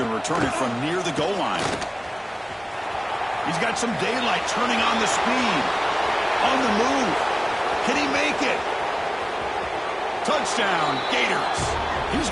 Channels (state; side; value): identical; both; correlation 1.00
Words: to return it from near the goal line. He's got some daylight, turning on the speed. On the move. Can he make it? Touchdown, Gators. He's